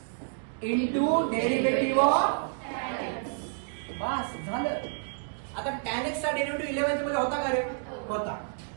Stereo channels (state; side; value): silent; left; digital silence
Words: into derivative of बस झालं. आता tan x चा डेरिव्हेटिव्ह 11th मध्ये होता का रे? होता.